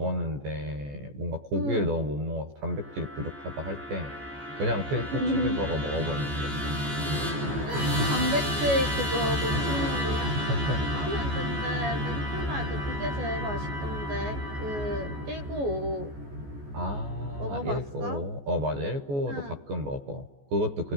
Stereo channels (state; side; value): late; left; 14 ms